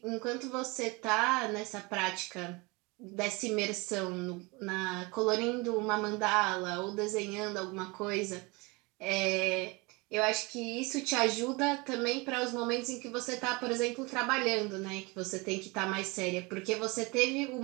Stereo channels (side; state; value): left; quieter; 26.3 dB